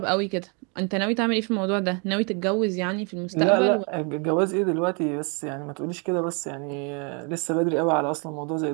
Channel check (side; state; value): left; quieter; 35.5 dB